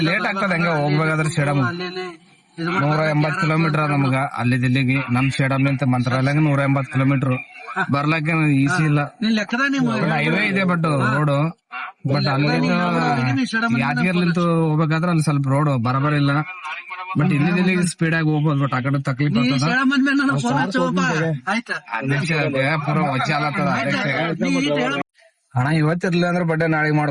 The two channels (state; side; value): identical; both; correlation 1.00